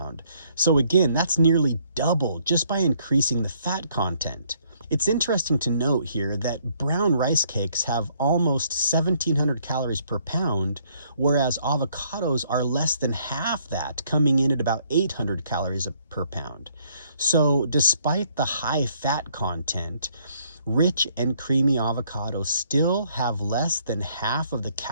So again, that's nearly double just by increasing the fat content. It's interesting to note here that brown rice cakes have almost 1,700 calories per pound, whereas avocados are less than half that, coming in at about 800 calories per pound. So despite the high fat content, rich and creamy avocados still have less than half of the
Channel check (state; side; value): inverted; both; correlation -0.67